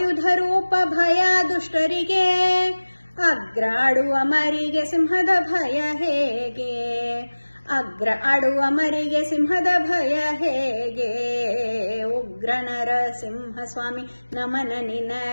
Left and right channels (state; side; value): inverted; both; correlation -1.00